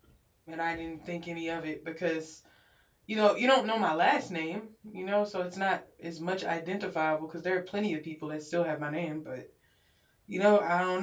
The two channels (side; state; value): both; identical; correlation 1.00